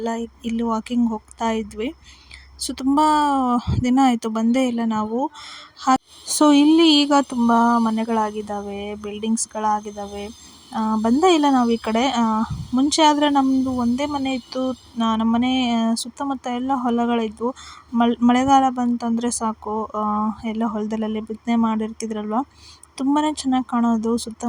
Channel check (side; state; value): both; identical; correlation 1.00